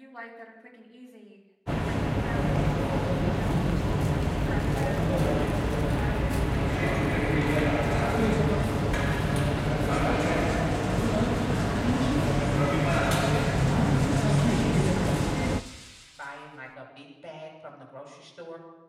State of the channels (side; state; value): both; identical; correlation 1.00